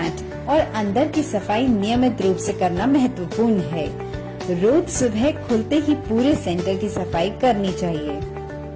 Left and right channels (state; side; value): identical; both; correlation 1.00